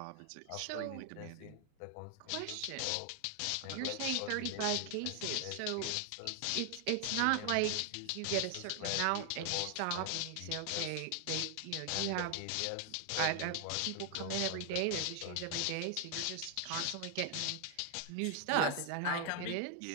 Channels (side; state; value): both; different; correlation 0.00